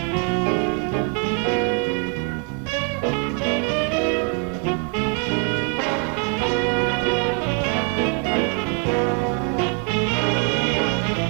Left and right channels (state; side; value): quieter; left; 38.4 dB